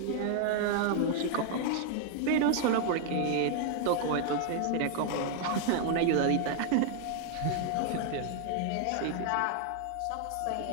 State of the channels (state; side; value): different; both; correlation 0.00